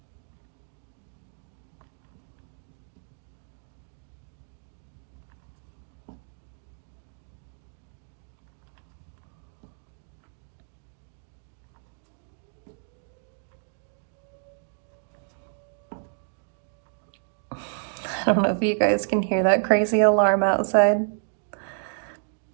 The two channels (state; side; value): silent; left; digital silence